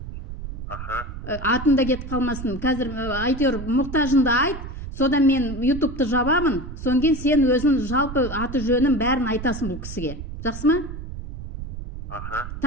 Атында кетіп қалмасын. Қазір айтыр мұқтажында айт. Содан мен ютубты жабамын, соң кейін сен өзің жалпы аты жөнін бәрін айтасың бұл кісіге. Жақсы ма?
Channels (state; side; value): noise; right; rumble, 9 dB below the sound